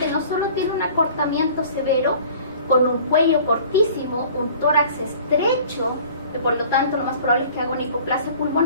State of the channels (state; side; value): inverted; both; correlation -0.48